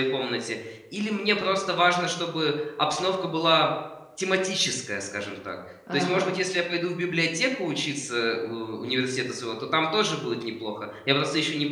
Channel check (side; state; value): both; identical; correlation 1.00